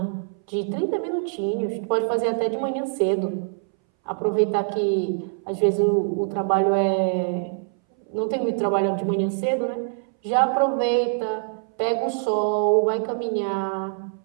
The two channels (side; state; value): left; silent; 61 dB below the other